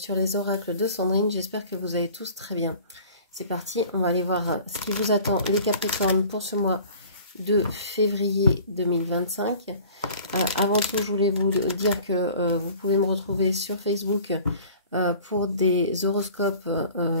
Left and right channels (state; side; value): inverted; both; correlation -0.47